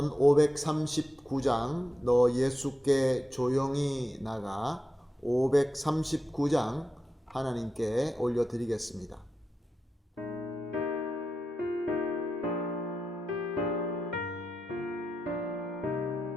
539장 너 예수께 조용히 나가 539장 하나님께 올려드리겠습니다.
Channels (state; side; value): normal; both; correlation 0.89